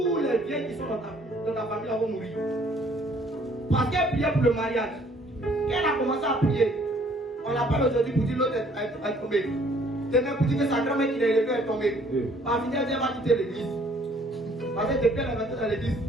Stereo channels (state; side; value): normal; both; correlation 0.60